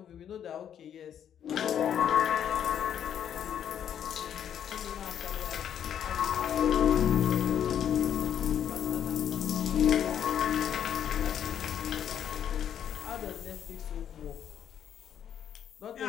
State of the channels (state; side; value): quieter; right; 9.3 dB